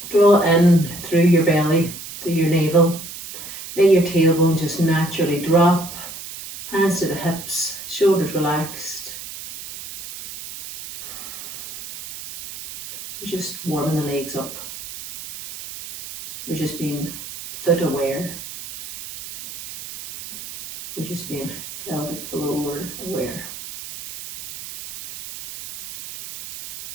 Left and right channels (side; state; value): right; noise; hiss, 12 dB below the sound